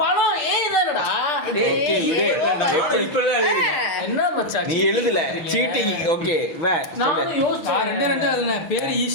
பழம் ஏய் தானடா. ஓகே இப்பதான் என்ன மச்சான் நீ எழுதல சீட்டிங். ஓகே வே நான் சொல்லு. யோசிச்சேன். ரெண்டு அதுன பேர்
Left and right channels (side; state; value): right; late; 6.3 ms